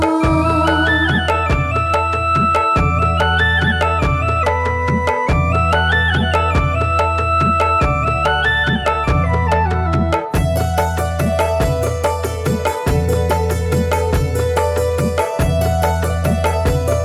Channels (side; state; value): both; identical; correlation 1.00